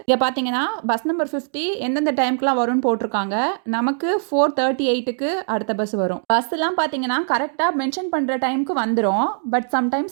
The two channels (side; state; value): left; silent; digital silence